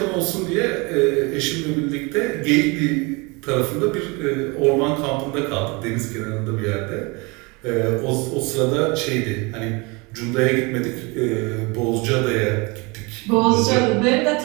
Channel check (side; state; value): left; quieter; 27.5 dB